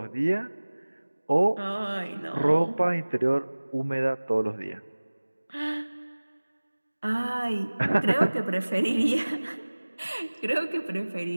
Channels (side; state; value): both; inverted; correlation -1.00